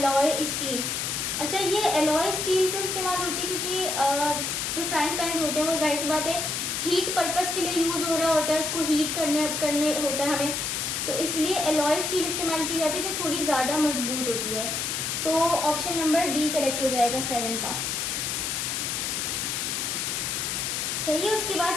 स्टील। अच्छा, ये एलॉय स्टील क्यों इस्तेमाल होती है, क्योंकि जो फ्राइंग पैन्स होते हैं वो जाहिर सी बात है हीट पर्पस के लिए यूज़ हो रहा होता है, उसको हीट करने होता है हमें, तो इसलिए एलॉय स्टील इस्तेमाल की जाती है जो थोड़ी ज़्यादा मजबूत होती है। तो ऑप्शन नंबर डी करेक्ट हो जाएगा 7 का, सही है। उसके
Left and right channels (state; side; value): noise; left; hiss, 1 dB below the sound